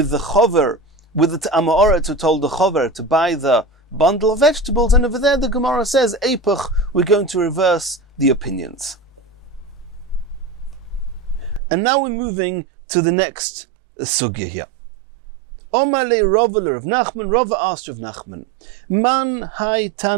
the chover, with the Ta'amaoret who told the chover to buy the bundle of vegetables, and over there the Gemara says Eipach, we're going to reverse the opinions. And now we're moving to the next sugya here. Omar le Rava of Nachman, Rava asked of Nachman, Man hai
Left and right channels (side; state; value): left; drops out; at 11.6 s